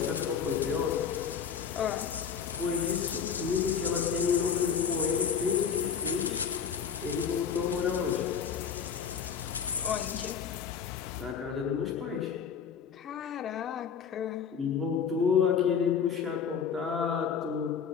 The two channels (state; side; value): quieter; right; 7.1 dB